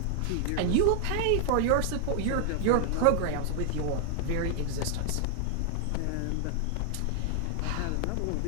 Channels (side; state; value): both; different; correlation 0.00